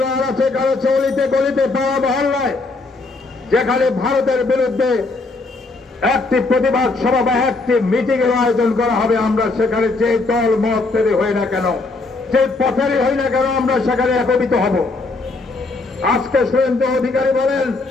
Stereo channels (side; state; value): right; quieter; 3.5 dB